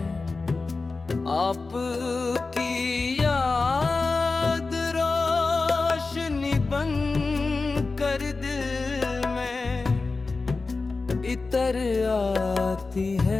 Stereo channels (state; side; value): quieter; right; 3.9 dB